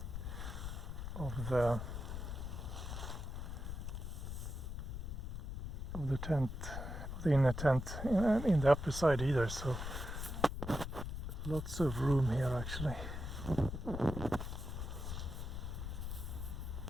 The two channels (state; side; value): noise; left; rumble, 5 dB below the sound